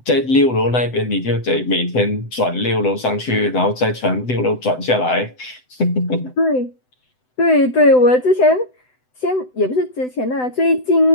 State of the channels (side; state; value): right; late; 7.9 ms